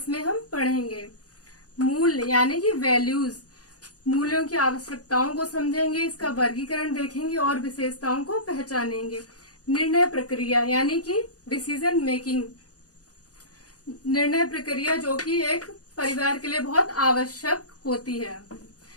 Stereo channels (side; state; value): right; late; 0.67 ms